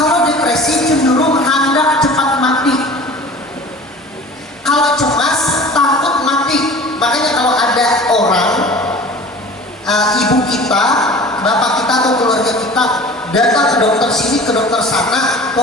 depresi cenderung hendak cepat mati. Kalau cemas, takut mati. Makanya kalau ada orang, ibu kita, bapak kita atau keluarga kita datang ke dokter sini, ke dokter sana,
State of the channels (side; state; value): both; normal; correlation 0.42